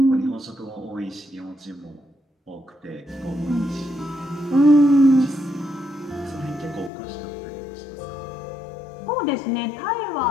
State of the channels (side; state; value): right; drops out; at 6.9 s